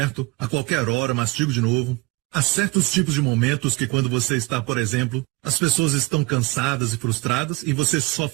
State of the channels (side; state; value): left; quieter; 24.3 dB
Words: a qualquer hora, mastigo de novo, há certos tipos de momentos que quando você está, por exemplo, as pessoas estão cansadas e frustradas e você só